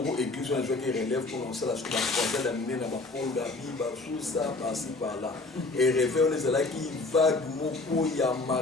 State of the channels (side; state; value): right; quieter; 3.3 dB